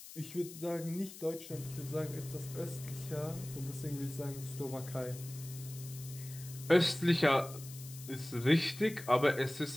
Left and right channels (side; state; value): left; noise; hiss, 14 dB below the sound